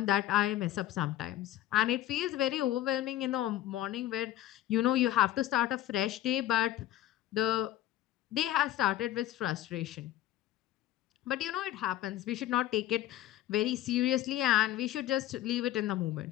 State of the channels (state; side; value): quieter; right; 13.7 dB